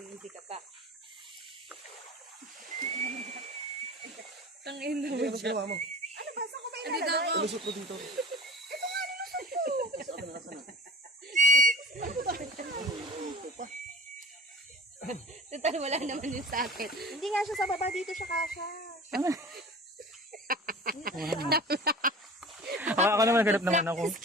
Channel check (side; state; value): both; normal; correlation 0.40